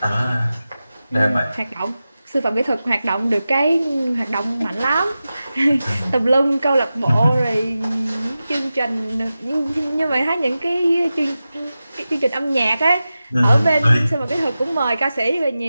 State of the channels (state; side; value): inverted; both; correlation -0.94